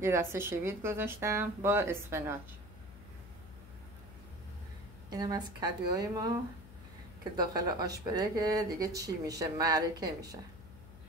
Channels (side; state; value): left; noise; hum, 17 dB below the sound